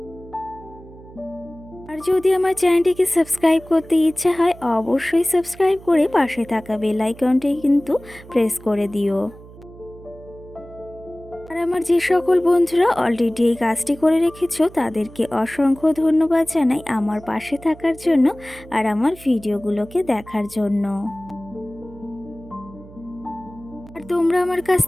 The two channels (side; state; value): right; noise; hum, 19 dB below the sound